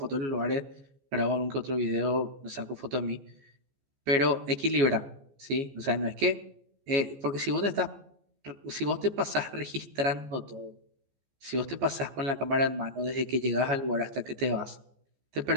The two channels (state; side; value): late; left; 14 ms